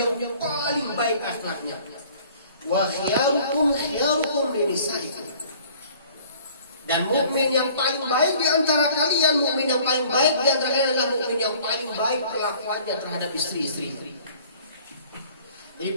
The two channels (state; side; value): inverted; both; correlation -0.53